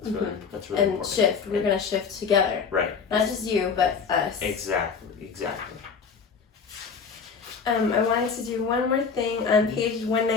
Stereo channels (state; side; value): quieter; right; 5.8 dB